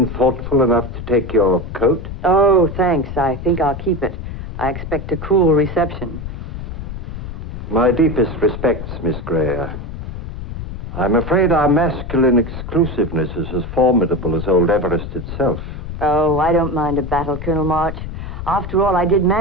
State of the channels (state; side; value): noise; left; rumble, 8 dB below the sound